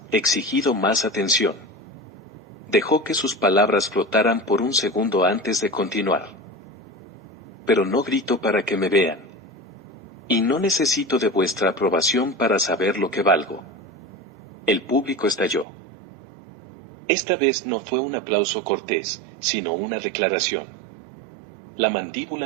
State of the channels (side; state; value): left; drops out; at 15.7 s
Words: exigido más atención? Dejó que sus palabras flotaran por un segundo antes de continuar. Pero no grito para que me vean. Y no necesito de vuestra aprobación para saber lo que valgo. El público estalló. Esta vez no fue un aplauso cortés, sino una declaración. La